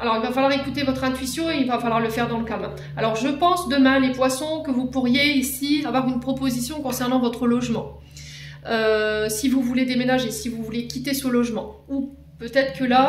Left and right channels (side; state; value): both; identical; correlation 1.00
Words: il va falloir écouter votre intuition et il va falloir le faire dans le calme. Alors, je pense demain, les poissons, que vous pourriez ici avoir une proposition concernant votre logement. Si vous voulez déménager, si vous voulez quitter ce logement. Ou peut-être que